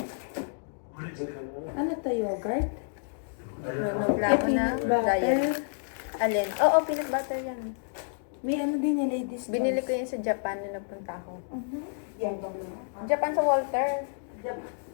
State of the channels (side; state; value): right; silent; digital silence